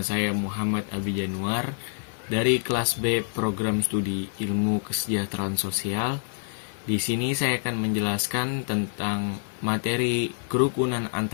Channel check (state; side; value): silent; right; digital silence